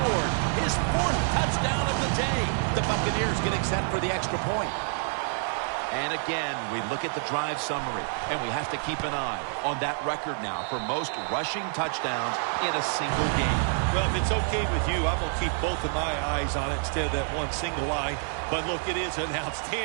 his 4th touchdown of the day. The Buccaneers getting set for the extra point. And again, we look at the drive summary, and we have to keep an eye on that record now for most rushing touchdowns in a single game. Well, if it's okay with you, I'm going to keep both of my eyes on it instead of that one single eye. But look, it is an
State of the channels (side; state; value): left; silent; 56 dB below the other